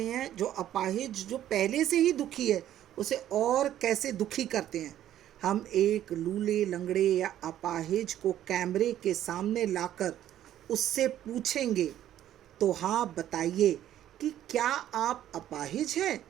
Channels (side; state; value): left; quieter; 11.9 dB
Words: हैं, जो अपाहिज जो पहले से ही दुखी है उसे और कैसे दुखी करते हैं। हम एक लूले लंगड़े या अपाहिज को कैमरे के सामने लाकर उससे पूछेंगे तो हाँ बताइए कि क्या आप अपाहिज हैं?